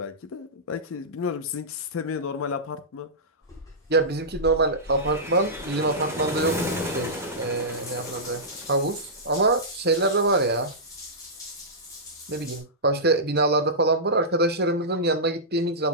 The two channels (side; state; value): both; normal; correlation -0.14